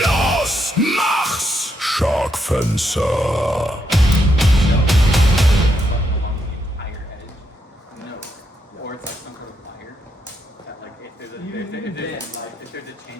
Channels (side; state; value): both; normal; correlation 0.79